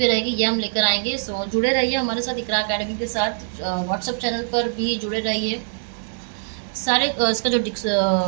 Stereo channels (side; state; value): left; silent; digital silence